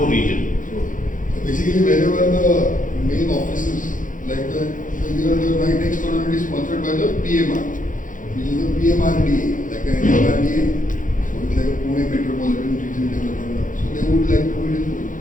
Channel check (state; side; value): late; right; 0.38 ms